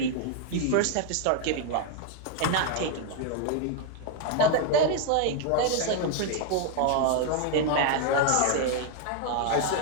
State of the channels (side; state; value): both; different; correlation 0.00